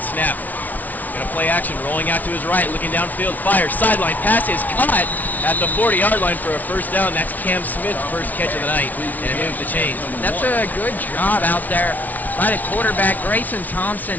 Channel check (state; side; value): late; right; 0.077 ms